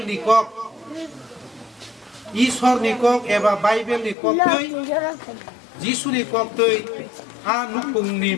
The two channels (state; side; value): drops out; right; at 4.2 s